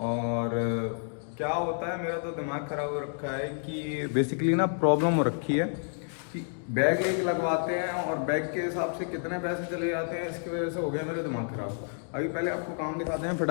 क्या होता है। मेरा तो दिमाग ख़राब हो रखा है कि बेसिकली ना प्रॉब्लम हो रखी है कि बैग एक लगवाते हैं और बैग के हिसाब से कितने पैसे चले जाते हैं। इसकी वजह से हो गया मेरा दिमाग ख़राब। अभी पहले आपको काम दिखाते हैं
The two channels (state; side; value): silent; right; 58 dB below the other